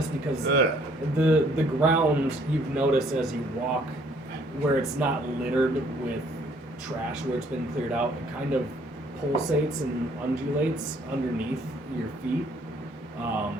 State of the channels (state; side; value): normal; both; correlation 0.62